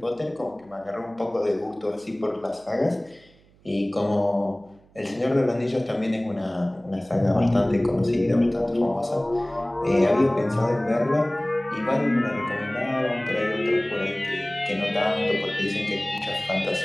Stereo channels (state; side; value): noise; right; hum, 29 dB below the sound